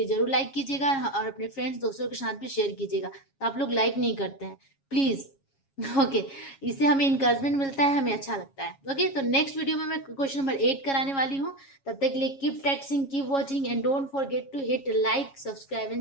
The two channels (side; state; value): right; late; 7.3 ms